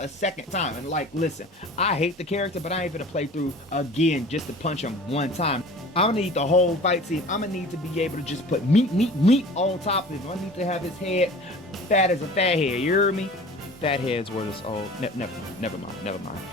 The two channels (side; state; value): both; normal; correlation 0.42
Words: second time. And like, listen, I hate the character, but I ain't gonna play through again just to punch him one time. I'm gonna need the whole fight scene. I'm gonna need to be able to just put meat on top of him. I need to have his head fat as a fat head, you hear me? Fat heads were this old. Never mind.